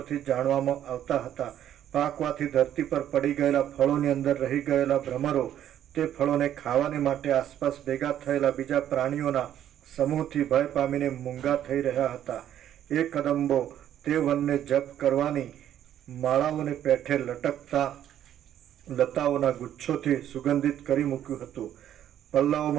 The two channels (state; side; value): quieter; left; 10.9 dB